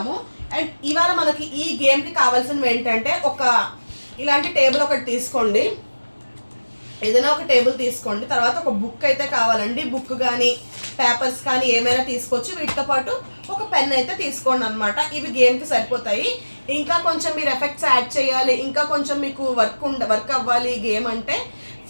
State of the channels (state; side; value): inverted; both; correlation -1.00